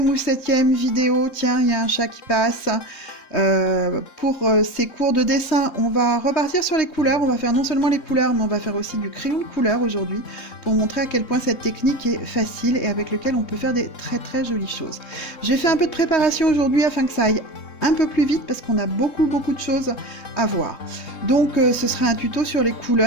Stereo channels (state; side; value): late; right; 3.2 ms